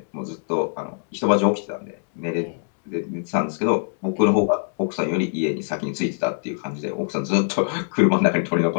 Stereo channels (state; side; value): silent; right; 63 dB below the other